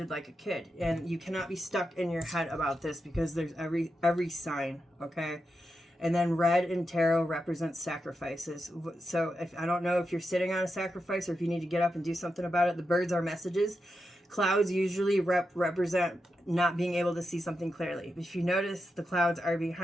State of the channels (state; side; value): normal; both; correlation 0.87